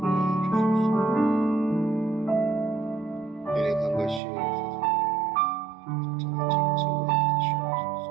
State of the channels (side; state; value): left; drops out; at 4.2 s